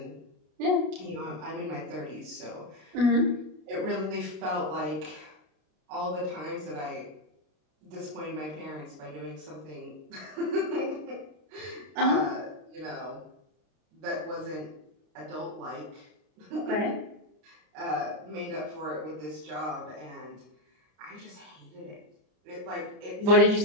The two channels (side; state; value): left; late; 33 ms